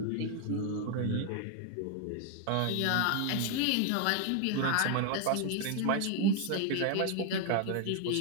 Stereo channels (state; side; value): different; both; correlation 0.01